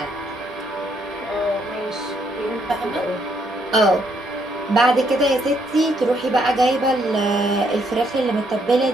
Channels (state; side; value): normal; both; correlation 0.72